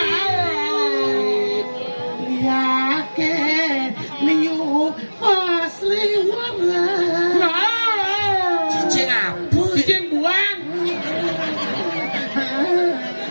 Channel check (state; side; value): inverted; both; correlation -1.00